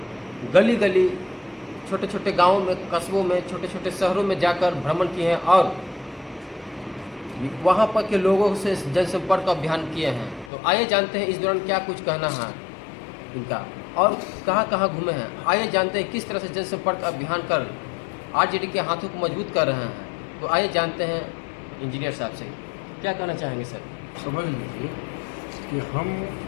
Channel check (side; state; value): right; drops out; at 10.5 s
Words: गली गली, छोटे छोटे गाँवों में, कस्बों में, छोटे छोटे शहरों में जाकर भ्रमण किए हैं और वहाँ पर के लोगों से जनसंपर्क अभियान किए हैं। तो आइए जानते हैं इस दौरान क्या कुछ कहना है इनका और कहाँ कहाँ घूमे हैं। आइए जानते हैं किस तरह से जनसंपर्क अभियान कर आरजेडी के हाथों को मजबूत कर रहे हैं। तो आइए जानते हैं इंजीनियर साहब से क्या कहना चाहेंगे सर। समझ लीजिए कि हम